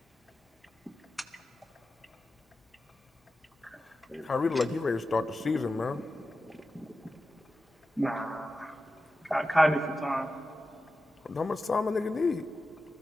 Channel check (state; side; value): normal; both; correlation 0.92